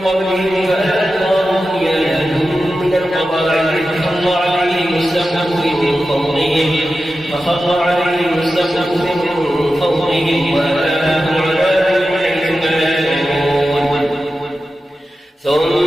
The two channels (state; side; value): normal; both; correlation 0.92